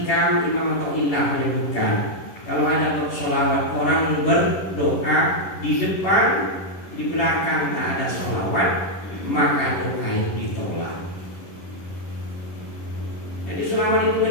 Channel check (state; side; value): late; right; 10 ms